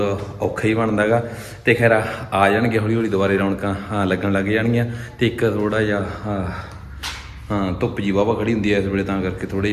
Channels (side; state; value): both; identical; correlation 1.00